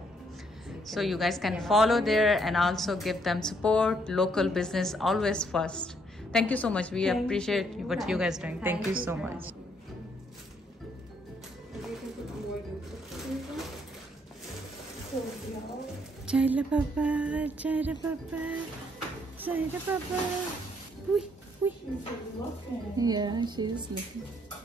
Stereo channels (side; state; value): both; normal; correlation 0.70